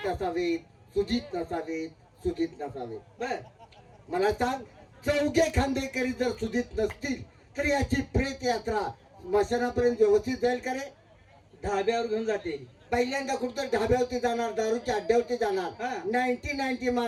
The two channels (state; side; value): identical; both; correlation 1.00